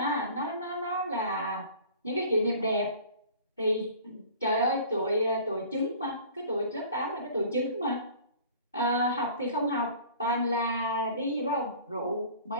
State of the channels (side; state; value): both; inverted; correlation -0.46